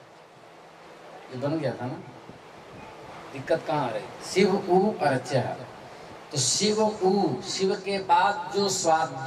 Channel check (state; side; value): identical; both; correlation 1.00